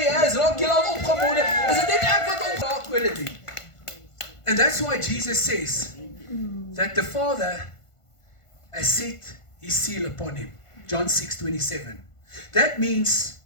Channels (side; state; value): right; late; 1.5 ms